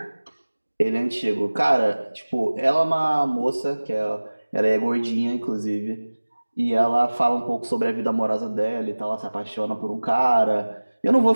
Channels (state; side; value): inverted; both; correlation -1.00